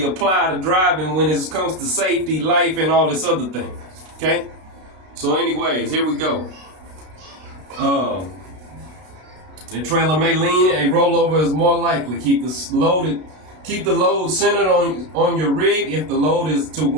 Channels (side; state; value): left; late; 32 ms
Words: apply to driving when it comes to safety, life, and all this other thing. Okay. So, anyways, here we go. The trailer may lean. A rollover is more likely. Keep the load centered on your rig if the load is to